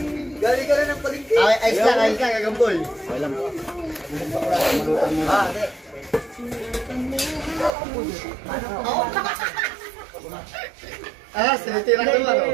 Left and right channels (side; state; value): left; drops out; at 7.7 s